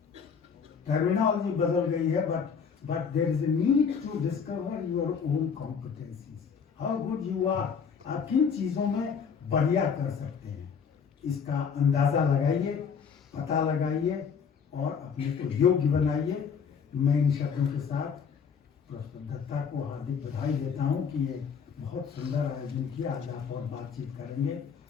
टर्मिनोलॉजी बदल गई है, but there is a need to discover your own competencies, how good you are. आप किन चीजों में बढ़िया कर सकते हैं, इसका अंदाजा लगाइए, पता लगाइए और अपने को योग्य बनाइए. मैं इन शब्दों के साथ प्रोफेसर दत्ता को हार्दिक बधाई देता हूं कि ये बहुत सुंदर आयोजन किया. आज आप और बातचीत करेंगे.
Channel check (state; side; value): quieter; right; 6.4 dB